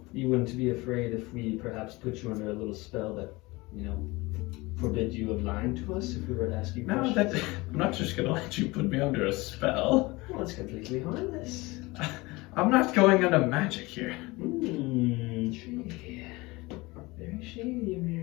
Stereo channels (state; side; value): quieter; right; 22.6 dB